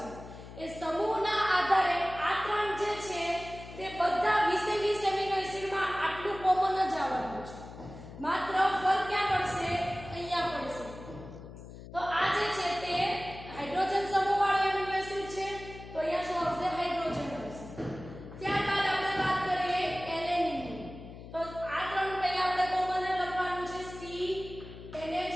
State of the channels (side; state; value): left; noise; hum, 14 dB below the sound